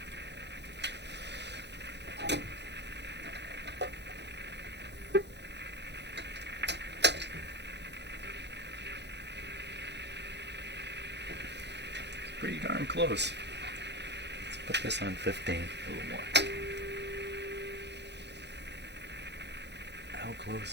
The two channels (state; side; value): late; left; 0.50 ms